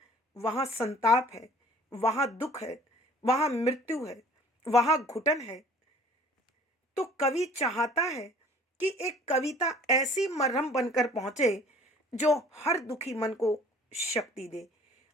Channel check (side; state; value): both; normal; correlation 0.51